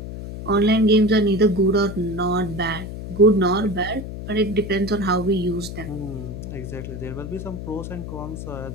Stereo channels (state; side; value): noise; left; hum, 8 dB below the sound